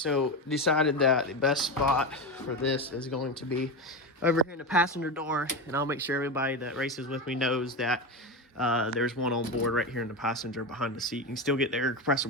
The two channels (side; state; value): both; normal; correlation 0.18